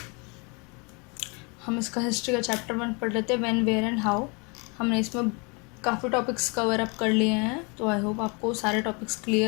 हम इसका history का chapter 1 पढ़ रहे थे, when, where and how. हमने इसमें काफ़ी टॉपिक्स कवर अप कर लिए हैं, तो आई होप आपको सारे टॉपिक्स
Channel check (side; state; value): right; quieter; 31.0 dB